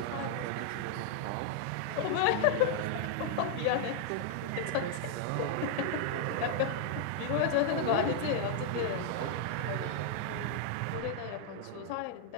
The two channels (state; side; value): different; both; correlation 0.00